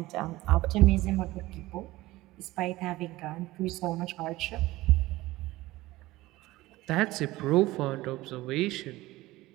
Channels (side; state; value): left; quieter; 18.3 dB